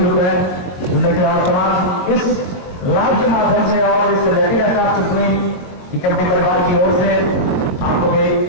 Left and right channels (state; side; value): late; right; 22 ms